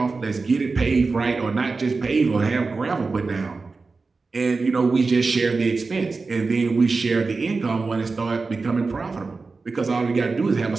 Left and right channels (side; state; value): left; quieter; 4.1 dB